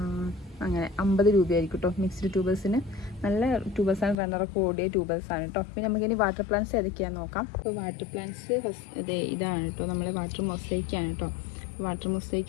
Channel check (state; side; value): drops out; right; at 4.2 s